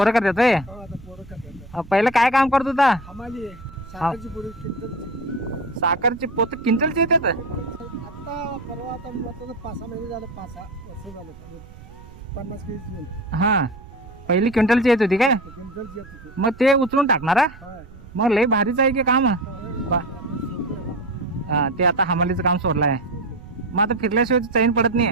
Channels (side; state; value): right; noise; rumble, 19 dB below the sound